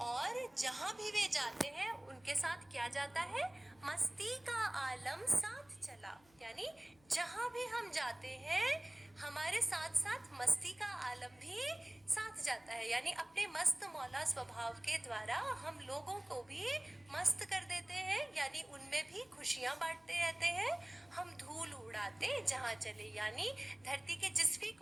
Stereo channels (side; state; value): left; noise; hum, 30 dB below the sound